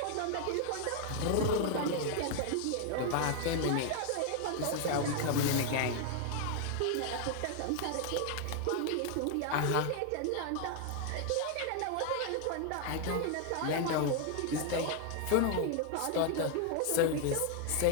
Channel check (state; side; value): different; both; correlation 0.00